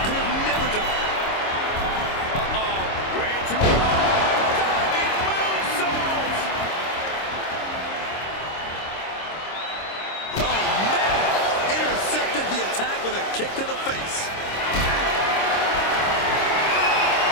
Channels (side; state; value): right; late; 26 ms